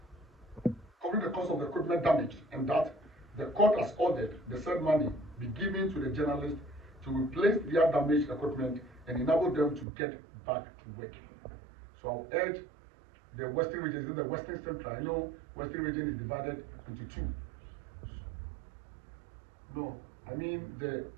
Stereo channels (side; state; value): left; drops out; at 9.9 s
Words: damage, and that the court has ordered the said money be given to the journalists to replace their damaged equipment and enable them to get back to work. So I'll urge the Western region, the Western Central. I know Western region is divided into 2. No, I mean the